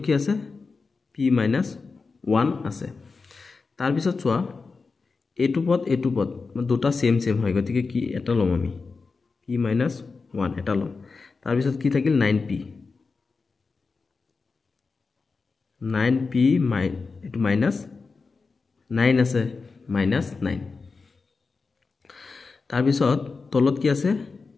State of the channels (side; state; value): right; quieter; 4.4 dB